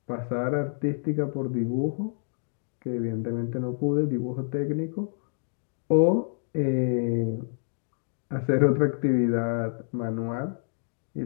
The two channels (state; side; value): silent; right; digital silence